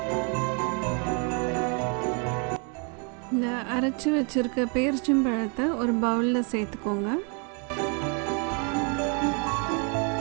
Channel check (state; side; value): quieter; left; 36.0 dB